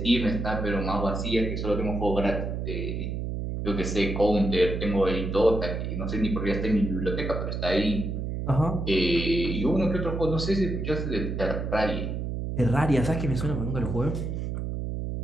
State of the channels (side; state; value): right; noise; hum, 3 dB below the sound